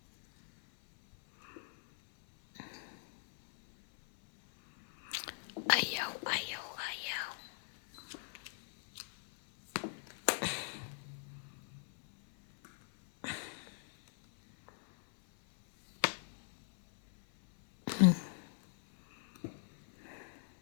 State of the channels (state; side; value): silent; right; 52 dB below the other